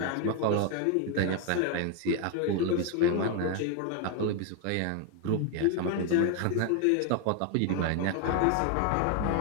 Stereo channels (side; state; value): both; different; correlation 0.01